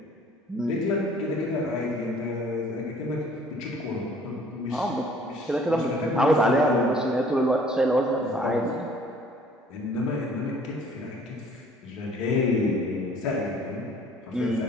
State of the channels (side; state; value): both; normal; correlation 0.55